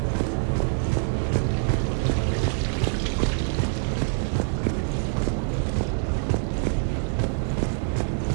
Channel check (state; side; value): silent; left; digital silence